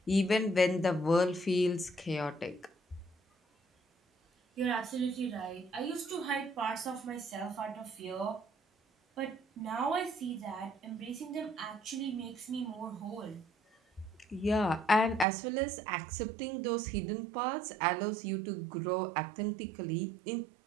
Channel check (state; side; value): drops out; left; at 15.2 s